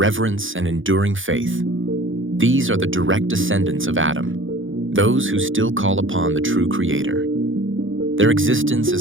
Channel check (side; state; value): left; late; 0.58 ms